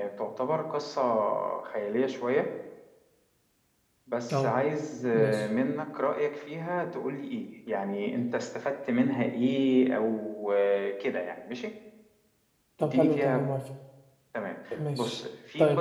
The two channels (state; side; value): identical; both; correlation 1.00